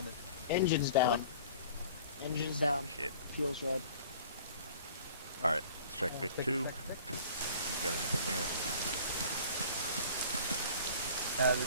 Engine's down. Engine's down. Shit. Fuel's red. Alright, let's check Vic Take 2. it, You check it. got anything here?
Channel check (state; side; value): inverted; both; correlation -0.47